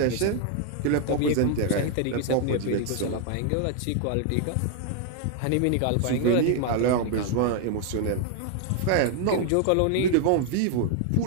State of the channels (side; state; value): both; different; correlation 0.00